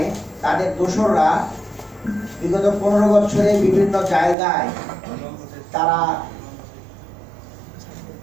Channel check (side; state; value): left; drops out; at 4.4 s